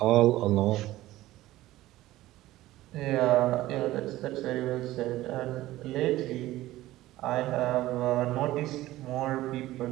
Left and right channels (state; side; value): quieter; left; 16.2 dB